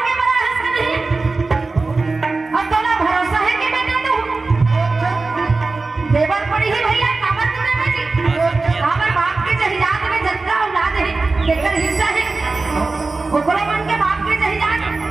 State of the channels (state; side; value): quieter; left; 3.7 dB